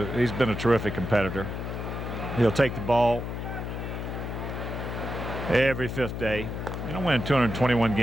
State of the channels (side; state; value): left; noise; hum, 5 dB below the sound